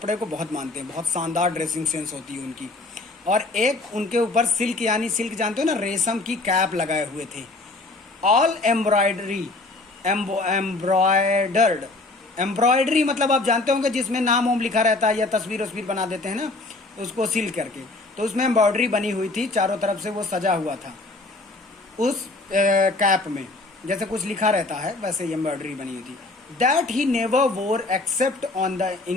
को बहुत मानते हैं, बहुत शानदार ड्रेसिंग सेंस होती है उनकी। और एक उनके ऊपर सिल्क, यानी सिल्क जानते हो ना, रेशम की कैप लगाए हुए थे। ऑल एम्ब्रॉयडरी, एम्ब्रॉयडर्ड, एम्ब्रॉयडरी मतलब आप जानते होंगे जिसमें नाम वाम लिखा रहता है या तस्वीर वस्वीर बना देते हैं ना, उसको सील करके, तो उसमें एम्ब्रॉयडरी बनी हुई थी, चारों तरफ से वो सजा हुआ था उस कैप में, जैसे कुछ लिखा रहता है वैसे एम्ब्रॉयडरी बनी हुई थी। That he never wore except on the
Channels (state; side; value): quieter; right; 3.1 dB